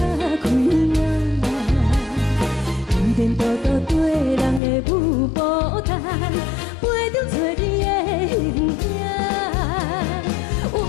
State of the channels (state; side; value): drops out; right; at 4.6 s